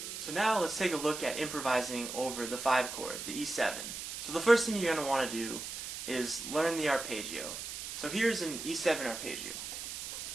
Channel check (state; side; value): noise; right; hiss, 7 dB below the sound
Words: So now let's take a look at improvising over the 5 chord, the E7. So the first thing you're going to want to do is learn the arpeggio. So here's an E7 arpeggio.